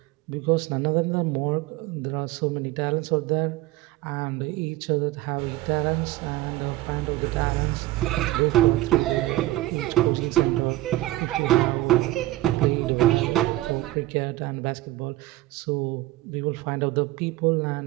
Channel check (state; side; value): quieter; left; 17.0 dB